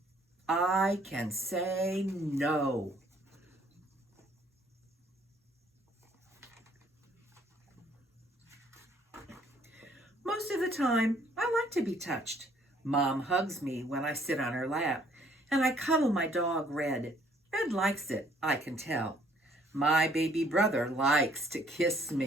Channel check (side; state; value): both; normal; correlation 0.62